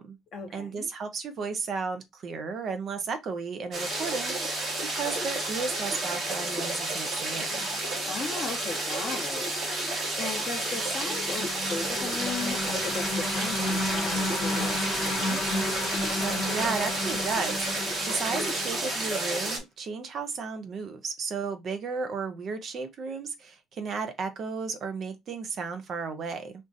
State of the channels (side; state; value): both; normal; correlation 0.66